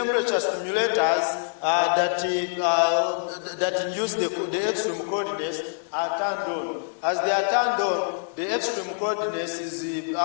stimulators that induce the extreme coldness are turned on. As they are turned on, the extreme coldness is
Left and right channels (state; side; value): silent; right; digital silence